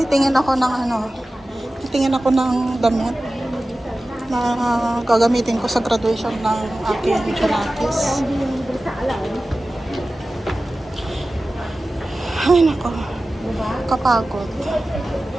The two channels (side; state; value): both; normal; correlation 0.96